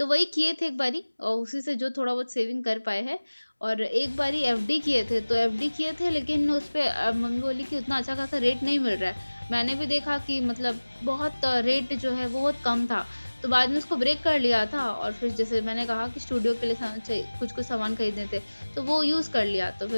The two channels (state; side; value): inverted; both; correlation -1.00